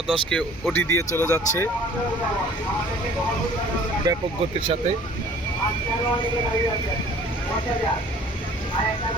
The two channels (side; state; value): both; normal; correlation 0.51